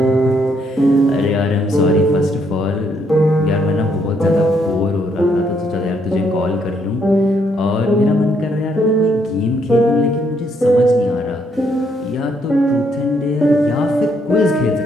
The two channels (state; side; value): normal; both; correlation 0.72